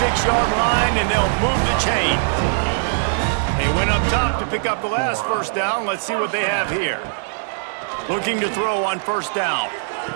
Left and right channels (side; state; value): left; silent; digital silence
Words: line, and they'll move the chain. They went up top to pick up the last 1st down. Let's see what they have here. Looking to throw on 1st down.